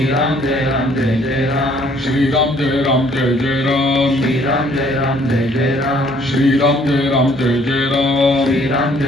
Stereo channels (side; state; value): both; normal; correlation 0.61